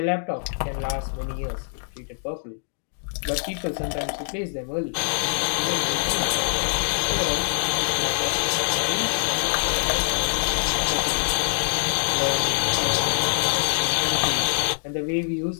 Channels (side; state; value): right; silent; digital silence